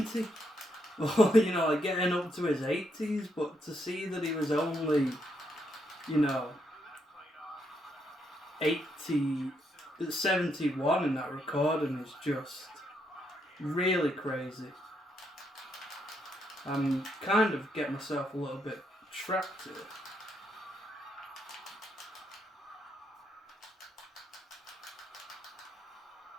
Or, getting up to his 80s, but to see that he was only, 71 in that recording is just really crazy. I'm kind of getting myself a little bit trapped here.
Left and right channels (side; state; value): both; normal; correlation 0.77